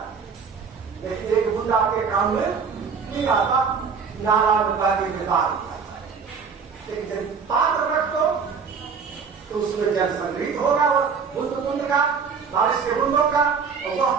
लेकिन एक बूंद आपके काम में नहीं आता, नाला में पानी बेकार होता है। लेकिन जब पात्र रख दो तो उसमें जल संग्रहित होगा, बूंद बूंद का, बारिश के बूंदों का, और वह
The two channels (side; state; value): left; quieter; 5.8 dB